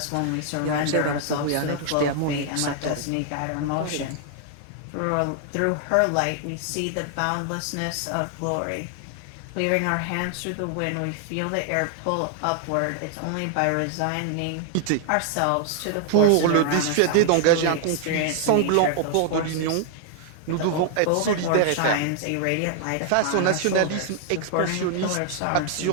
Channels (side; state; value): both; different; correlation 0.00